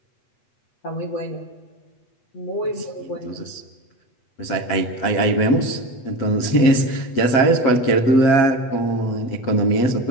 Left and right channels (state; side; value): late; right; 8.2 ms